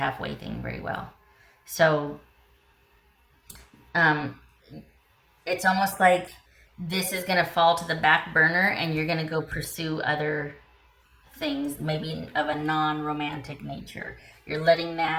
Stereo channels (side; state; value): both; identical; correlation 1.00